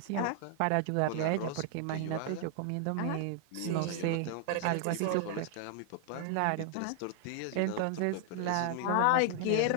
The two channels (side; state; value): both; different; correlation 0.00